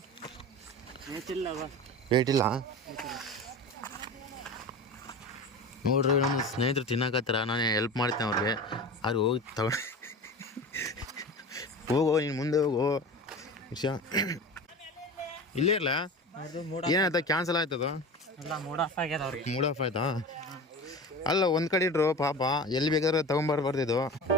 ವೇಟ್ ಇಲ್ಲ ನೋಡ್ರಿ. ನಮ್ಮ ಸ್ನೇಹಿತರು ತಿನ್ನಕತ್ತಾರ, ನಾನು ಹೆಲ್ಪ್ ಮಾಡ್ತೇನೆ ಅವ್ರಿಗೆ. ಅವ್ರು ಹೋಗಿ ತಗೊಂಡು ಹೋಗೋ, ನೀನು ಮುಂದೆ ಹೋಗೋ. ವಿಷಯ ಇಲ್ಲೇ ಇರಲ್ಲ. ಏನಾಯ್ತಾ? ಕ್ಯಾನ್ಸಲ್ ಆಯ್ತದ? ಮೂಡ್ ಆಫ್ ಆಯ್ತಾ? ಅಲ್ಲ, ಒಂದು ಕಡೆ ಇಟ್ರು ಪಾಪ. ಎಲ್ಲಿ ಬೇಕಾದ್ರೆ ತಗೊಂಬರ್ಬಾರ್ದಿದ್ದು.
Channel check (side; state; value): both; normal; correlation 0.32